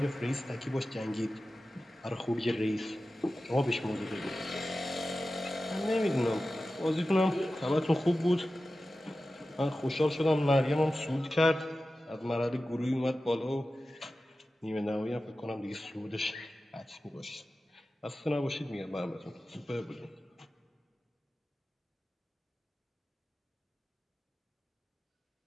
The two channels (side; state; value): both; normal; correlation 0.94